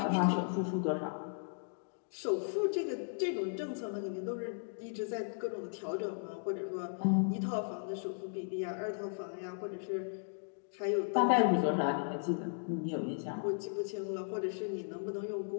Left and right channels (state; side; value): silent; right; digital silence